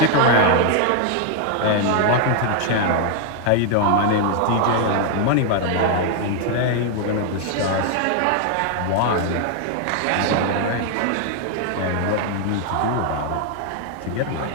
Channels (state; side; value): different; both; correlation 0.00